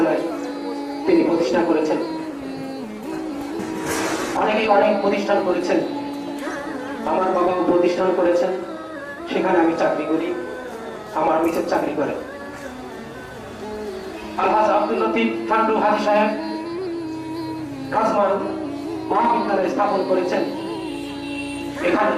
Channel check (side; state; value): both; identical; correlation 1.00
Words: তিনি প্রতিষ্ঠা করেছেন। অনেকেই অনেক প্রতিষ্ঠান করেছেন, আমার বাবাও প্রতিষ্ঠান করেছেন, সেখানে আমি চাকরি করি, আমার মিসেস চাকরি করে। আলহাজ আব্দুল লতিফ ফান্ডু হাজি সাহেব রাজমান মহাবিদ্যালয় স্থাপন করেছেন। এখানে